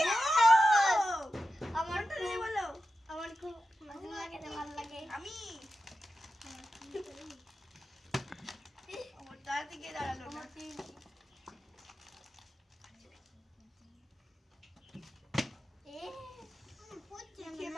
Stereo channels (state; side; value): normal; both; correlation 0.91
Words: আমার তো নেই বলো। আমার খুব ভালো লাগে, ভালো লাগে। আমি আমার তার দিকে দাঁড়ালো না।